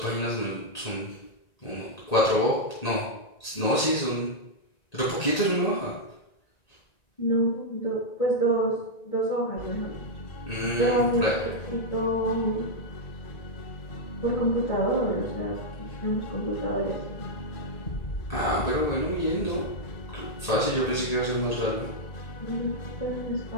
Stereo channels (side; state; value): right; late; 1.9 ms